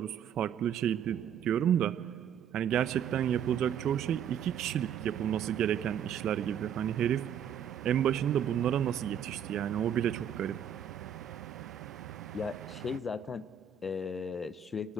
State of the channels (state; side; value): quieter; left; 8.1 dB